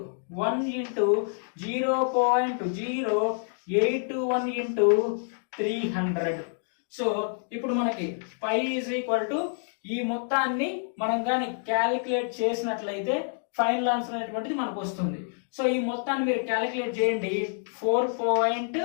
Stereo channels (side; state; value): right; silent; digital silence